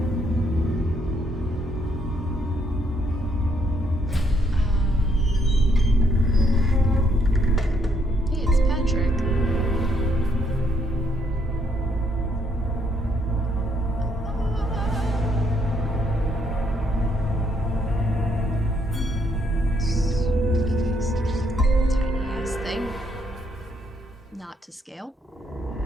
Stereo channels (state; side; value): normal; both; correlation 0.72